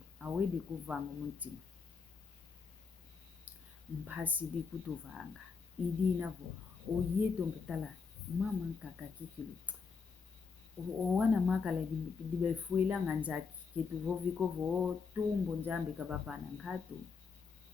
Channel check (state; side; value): quieter; right; 5.2 dB